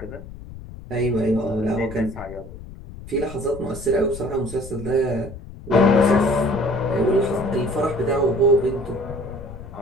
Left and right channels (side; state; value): left; noise; rumble, 14 dB below the sound